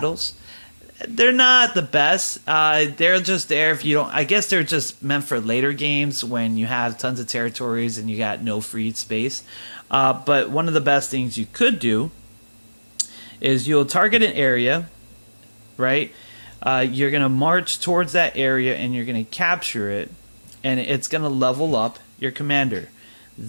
They're not the best. They're just there if you don't. I guess they're just meant for later games when you have tons of territories and you got no free space. But one of the best things you could do is you'll target an area, right? You're gonna march towards that area and you're gonna capture it, and it's gonna level up your commander.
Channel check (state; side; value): inverted; both; correlation -1.00